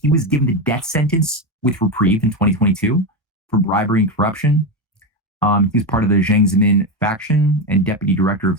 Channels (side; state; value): both; normal; correlation 0.13